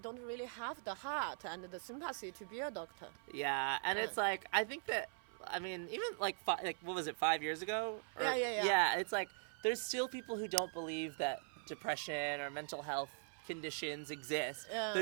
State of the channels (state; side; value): silent; left; 50 dB below the other